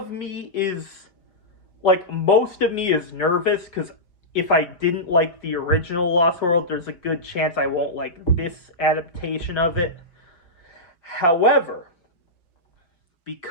me is, like, most of me is nervous, because if I didn't like the original Lost World, there's a good chance I won't like this adaptation of it. However,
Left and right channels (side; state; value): right; late; 5.8 ms